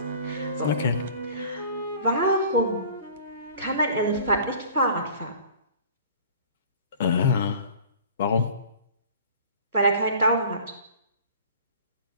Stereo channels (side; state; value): both; inverted; correlation -0.44